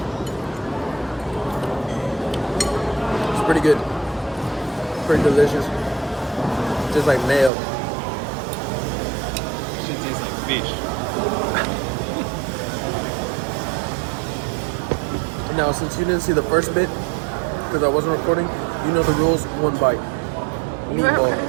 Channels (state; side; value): drops out; left; at 7.5 s